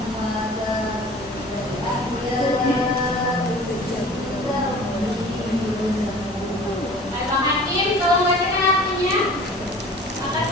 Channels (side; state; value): both; normal; correlation 0.44